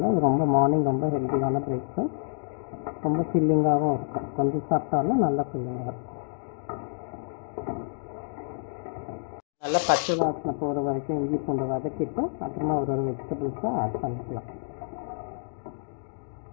இது மார்னிங் ரொம்ப ஹெல்த்தியான பிரேக்ஃபாஸ்ட். ரொம்ப ஃபில்லிங்காகவும் இருக்கும். கொஞ்சம் சாப்பிட்டாலும் நல்லா ஃபில்லிங்காக இருக்கும். நல்லா பச்சை வாசனை போகிற வரைக்கும் இஞ்சி பூண்டு வதக்கிட்டு அப்புறமா ஒரு வெஜிடபிள்ஸை ஆட் பண்ணிக்கலாம்.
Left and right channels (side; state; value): right; silent; digital silence